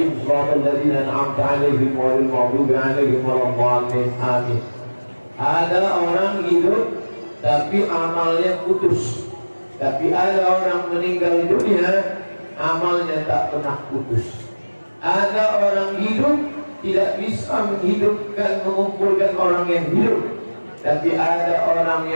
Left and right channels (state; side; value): inverted; both; correlation -1.00